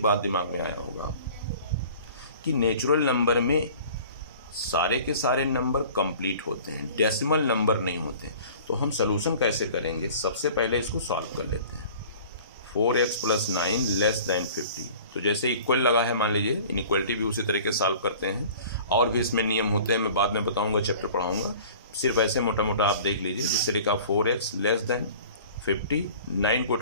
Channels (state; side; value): inverted; both; correlation -0.45